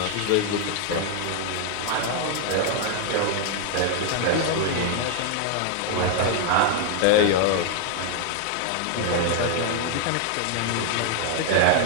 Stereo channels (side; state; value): both; different; correlation 0.00